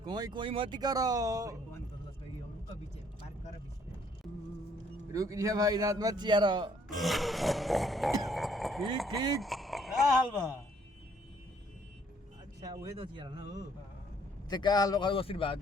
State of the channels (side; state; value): both; normal; correlation 0.64